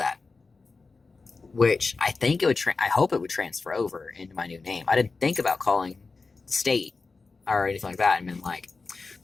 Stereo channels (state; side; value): quieter; right; 4.1 dB